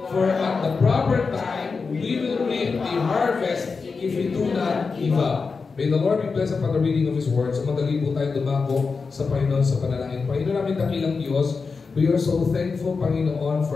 for at the proper time, we will reap the harvest if we do not give up. May the Lord be blessed upon the reading of His Word. So madali po tayo dumako sa Panginoon sa panalangin. Panginoon namin dakilang Diyos, we are so thankful, Panginoon,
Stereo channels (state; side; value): quieter; right; 4.8 dB